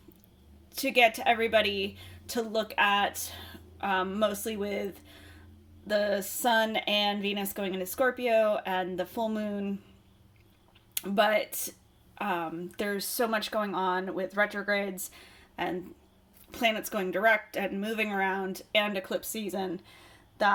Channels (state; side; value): identical; both; correlation 1.00